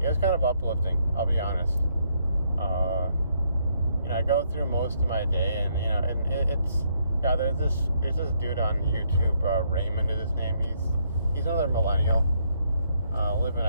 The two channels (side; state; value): both; inverted; correlation -0.72